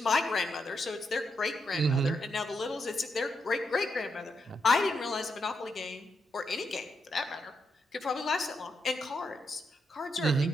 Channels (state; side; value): normal; both; correlation 0.82